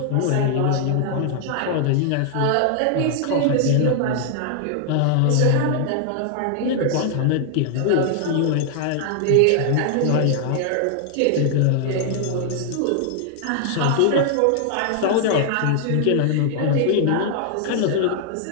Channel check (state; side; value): different; both; correlation 0.00